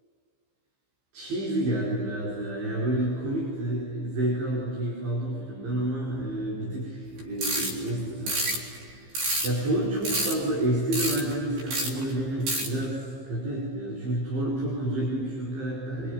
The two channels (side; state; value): left; late; 15 ms